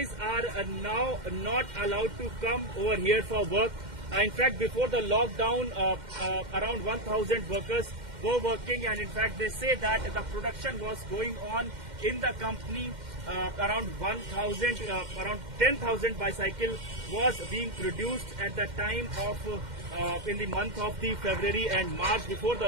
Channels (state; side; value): late; left; 2.1 ms